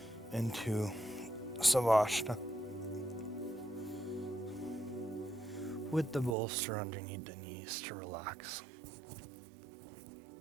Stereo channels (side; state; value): left; drops out; at 6.4 s